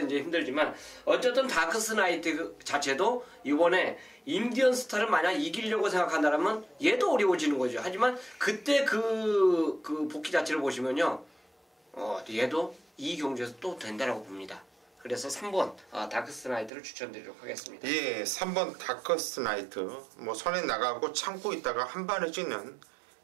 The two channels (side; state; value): left; drops out; at 16.7 s